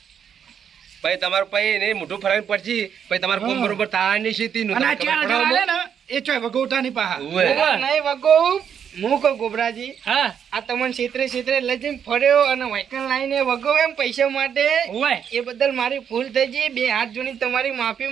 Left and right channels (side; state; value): left; quieter; 8.1 dB